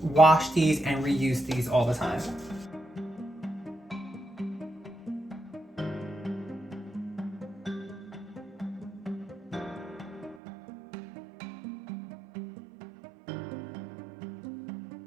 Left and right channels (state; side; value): drops out; left; at 10.4 s